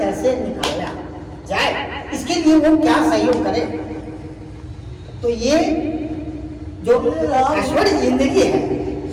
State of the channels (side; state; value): both; identical; correlation 1.00